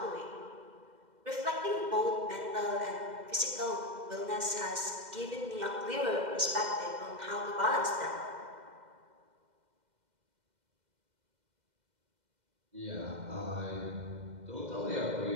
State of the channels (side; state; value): left; late; 2.0 ms